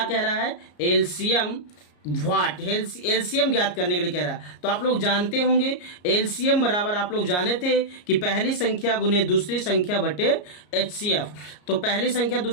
कह रहा है, एलसीएम एलसीएम ज्ञात करने के लिए कह रहा है। तो आप लोग जानते होंगे एलसीएम बराबर, आप लोग जाने थे कि पहली संख्या गुने दूसरी संख्या बटे HCF। तो पहली संख्या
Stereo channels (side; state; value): right; late; 34 ms